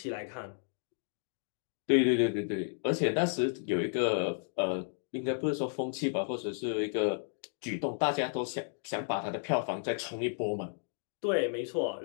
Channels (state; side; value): silent; right; digital silence